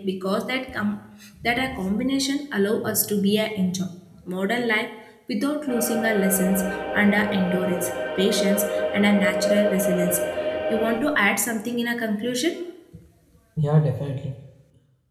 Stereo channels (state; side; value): identical; both; correlation 1.00